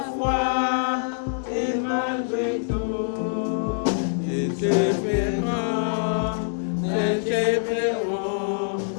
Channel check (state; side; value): silent; right; digital silence